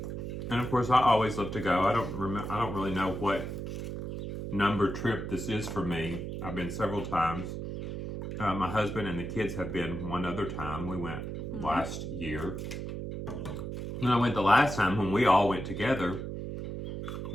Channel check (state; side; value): noise; right; hum, 6 dB below the sound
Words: And of course, I always love to go. I don't really know what number trip this is for me. I've been several times. My husband and the kids have been one other time. We went last year. And I went the last time when we all went together.